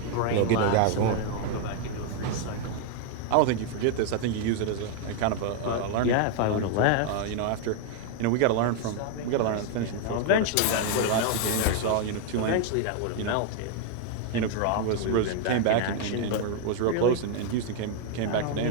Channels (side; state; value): both; different; correlation 0.00